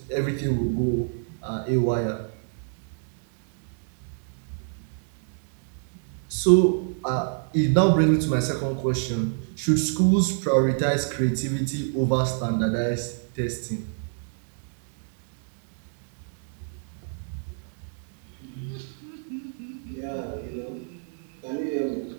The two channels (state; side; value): silent; left; digital silence